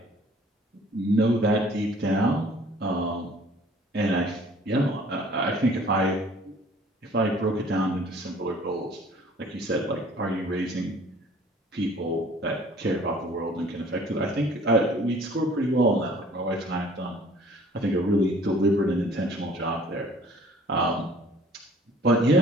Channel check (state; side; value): normal; both; correlation 0.53